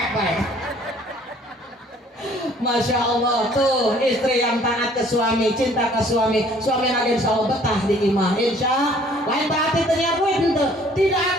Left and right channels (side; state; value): both; normal; correlation 0.57